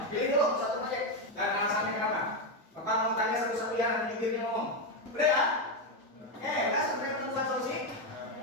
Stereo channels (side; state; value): both; normal; correlation 0.07